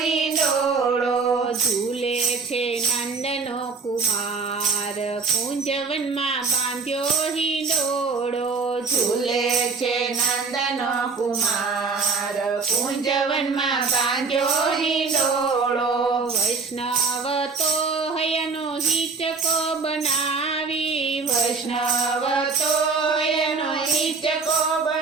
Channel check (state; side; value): quieter; left; 4.7 dB